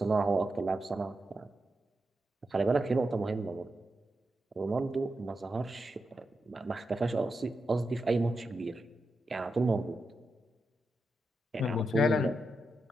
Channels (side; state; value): both; normal; correlation 0.87